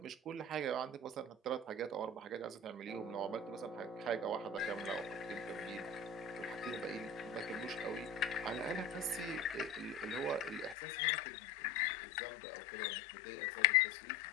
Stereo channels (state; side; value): drops out; right; at 10.8 s